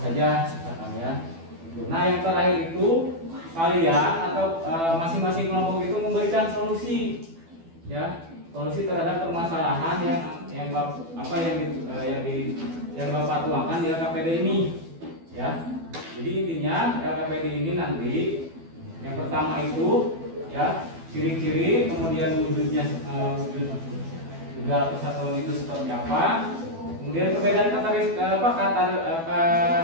misalkan ya. Nah, yang terakhir itu kalian atau masing-masing kelompok itu memberikan solusi ya. solusi terhadap permasalahan yang Bapak tuangkan di LKPD ini, ya. Jadi intinya LKPD ini nanti yang pertama itu ya ciri-ciri, kemudian wujudnya wujud juga persatuan itu seperti apa, kemudian perbedaan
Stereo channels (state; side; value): late; left; 12 ms